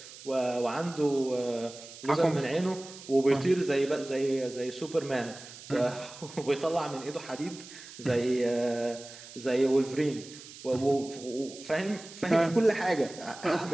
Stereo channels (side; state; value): right; noise; hiss, 16 dB below the sound